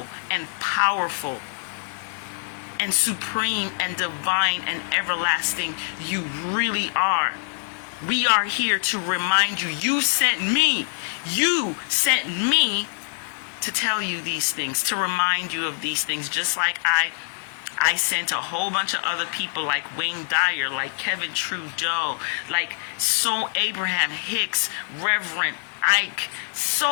and powerful, and supreme, and divine, and everlasting you really are. We are here to remind you, you sent me to tell you these things, to remind you of these things, just like I sent a whole bunch of other people like Wayne Dyer, like Kevin Trudeau, like Abraham Hicks, Reverend Ike,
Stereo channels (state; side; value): silent; right; digital silence